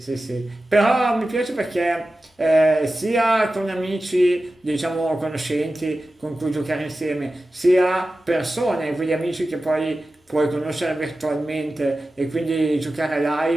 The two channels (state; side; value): normal; both; correlation 0.94